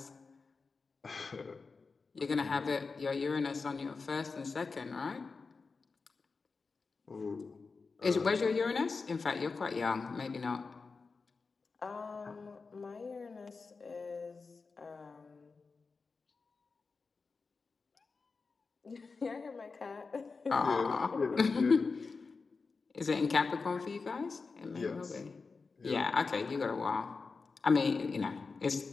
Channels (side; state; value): right; quieter; 4.5 dB